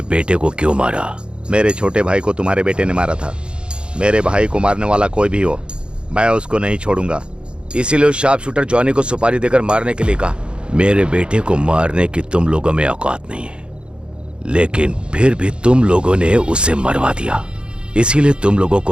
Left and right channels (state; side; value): late; left; 0.054 ms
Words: बेटे को क्यों मारा? मेरे छोटे भाई को तुम्हारे बेटे ने मारा था। मेरे भाई को मारने वाला कोई भी हो, मैं उसको नहीं छोड़ूंगा। इसीलिए उस शार्प शूटर जॉनी को सुपारी देकर मारने के लिए कहा। मेरे बेटे को मारने की तुम लोगों में औकात नहीं है, लेकिन फिर भी तुम लोगों ने उसे मरवा दिया, इसीलिए तुम लोगों